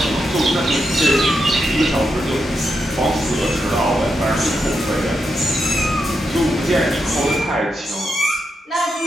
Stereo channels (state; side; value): normal; both; correlation 0.84